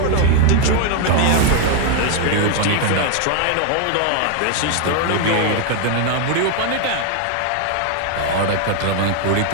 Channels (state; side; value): different; both; correlation 0.01